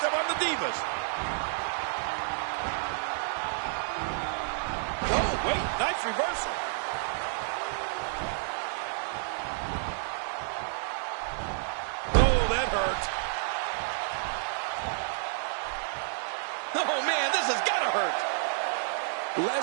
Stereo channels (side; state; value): left; silent; digital silence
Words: up on the Divas. Oh, wait, nice reversal. Oh, that hurt. Oh, man, this has got to hurt.